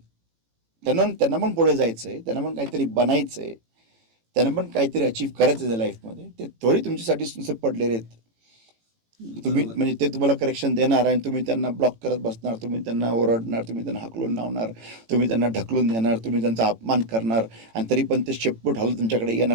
त्यांना पण पुढे जायचंय, त्यांना पण काहीतरी बनायचंय, त्यांना पण काहीतरी अचीव्ह करायचं आहे लाईफमध्ये. ते थोडी तुमच्यासाठी नुसते पडलेले आहेत. तुम्ही म्हणजे ते तुम्हाला करेक्शन देणार आणि तुम्ही त्यांना ब्लॉक करत बसणार, तुम्ही त्यांना ओरडणार, तुम्ही त्यांना हाकलून लावणार, तुम्ही त्यांना ढकलून देणार, तुम्ही त्यांचा अपमान करणार, आणि तरी पण ते शेपूट हलत तुमच्याकडे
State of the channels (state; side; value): late; left; 18 ms